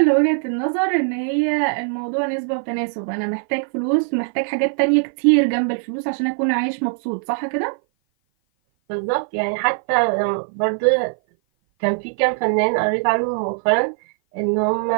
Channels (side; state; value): left; silent; 56 dB below the other